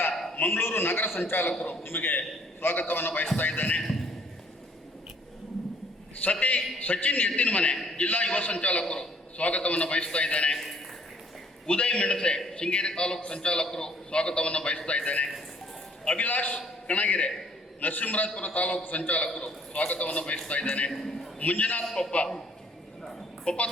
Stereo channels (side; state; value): both; normal; correlation 0.61